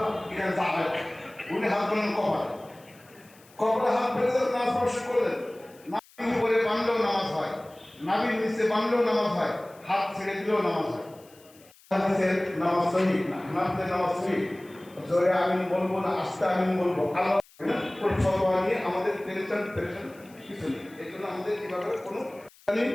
উনি হাত বলেন কপালে হাত ফেলে নামাজ স্পর্শ করলেন। নাভির উপরে বাঁধলেও নামাজ হয়, নাভির নিচে বাঁধলেও নামাজ হয়, হাত ছেড়ে দিলেও নামাজ হয়। নামাজ সহি না, হানাফিদের নামাজ সহি। জোরে আমিন বলবো না আস্তে আমিন বলবো, আল্লাহ ফতোয়া নিয়ে আমাদের টেনশন কিছু নেই। এই জন্য আমাদের কিভাবে কোনো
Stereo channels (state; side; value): noise; left; hiss, 27 dB below the sound